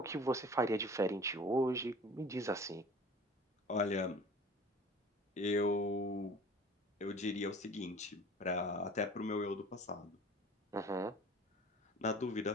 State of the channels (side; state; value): both; normal; correlation 0.44